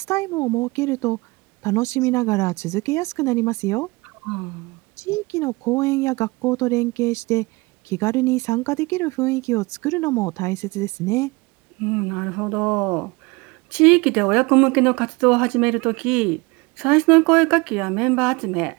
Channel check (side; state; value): left; quieter; 24.4 dB